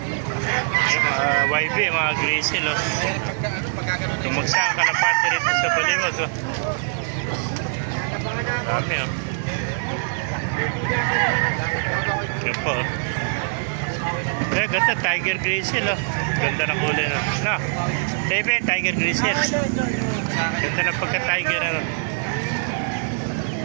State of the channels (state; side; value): silent; left; digital silence